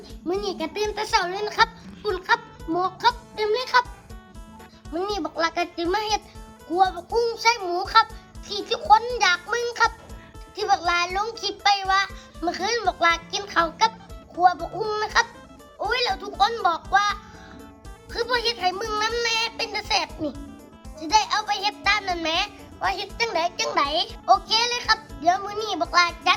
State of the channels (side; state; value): both; identical; correlation 1.00